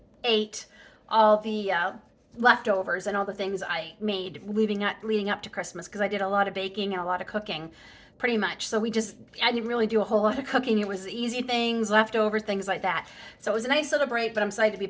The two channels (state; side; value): identical; both; correlation 1.00